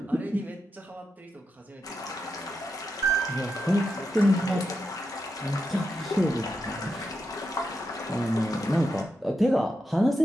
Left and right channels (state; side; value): normal; both; correlation 0.86